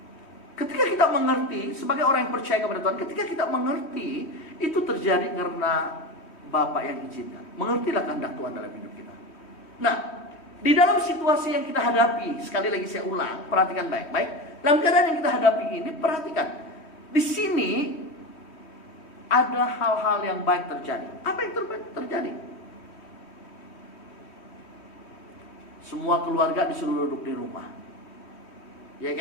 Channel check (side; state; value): right; late; 3.1 ms